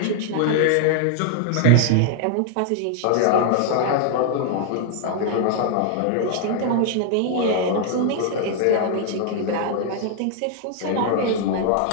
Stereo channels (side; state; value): both; different; correlation 0.00